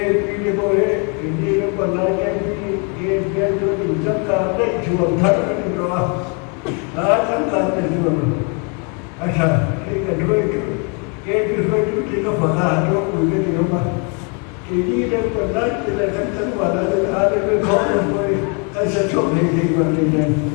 pili boleh, ini lepas lagi ke biar tu injak karte jual thar ni doa, macam karte jual. Asal ke kedua itu kita faham tu punya ni apa. Ini lepas lagi lepas tu ada berkau boleh, asal cok ni macam ni.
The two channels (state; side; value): quieter; right; 36.2 dB